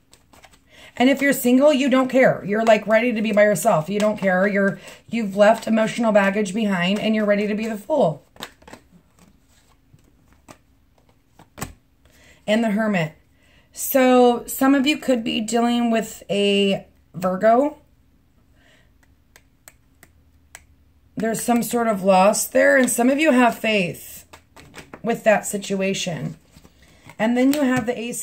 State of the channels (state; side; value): identical; both; correlation 1.00